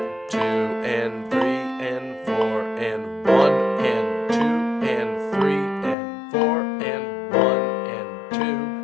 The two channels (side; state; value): right; drops out; at 6.0 s